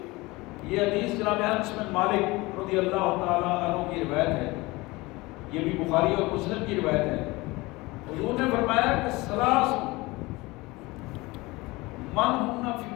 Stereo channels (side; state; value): right; quieter; 22.1 dB